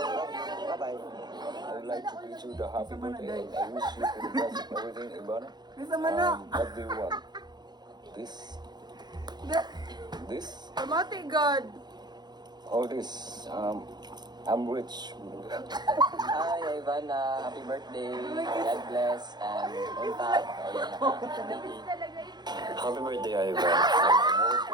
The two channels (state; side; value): late; left; 0.21 ms